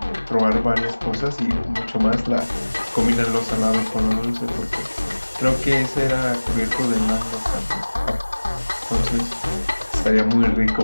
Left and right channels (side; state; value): both; inverted; correlation -1.00